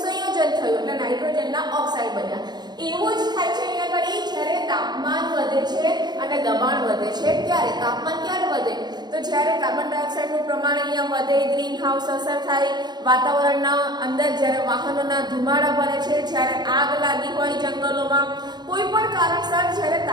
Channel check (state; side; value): late; left; 0.20 ms